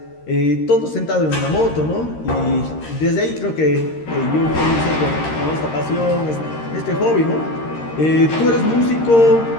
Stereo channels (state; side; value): late; right; 13 ms